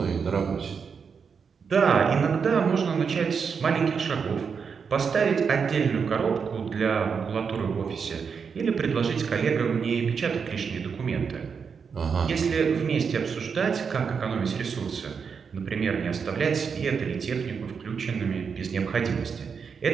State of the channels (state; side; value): quieter; left; 6.1 dB